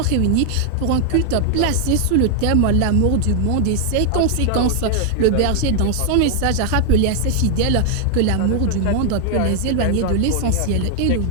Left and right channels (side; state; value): both; different; correlation 0.00